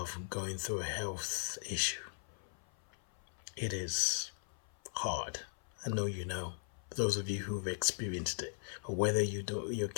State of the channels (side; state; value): right; silent; 52 dB below the other